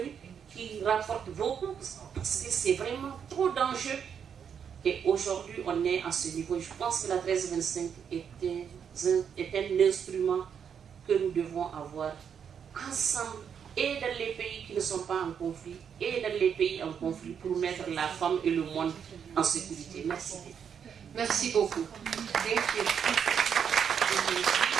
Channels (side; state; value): left; quieter; 7.6 dB